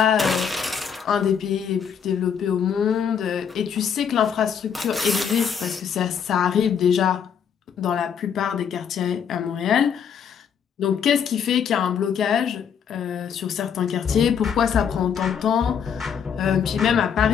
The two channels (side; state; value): right; quieter; 7.6 dB